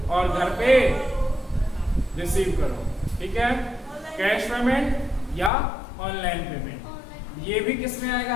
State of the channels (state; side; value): drops out; right; at 5.5 s